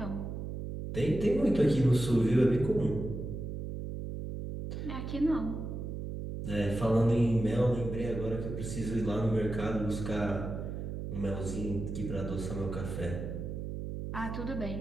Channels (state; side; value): noise; right; hum, 5 dB below the sound